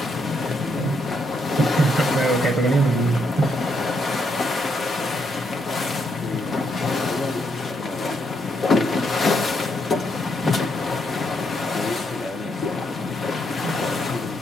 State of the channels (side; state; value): both; normal; correlation 0.77